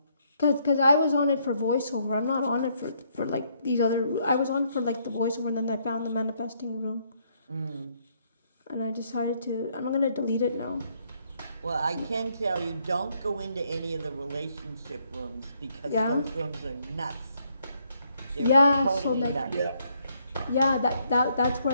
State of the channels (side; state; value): both; inverted; correlation -0.71